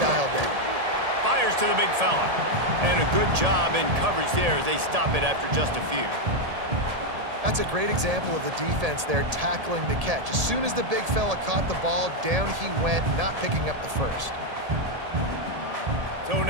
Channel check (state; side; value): late; left; 1.8 ms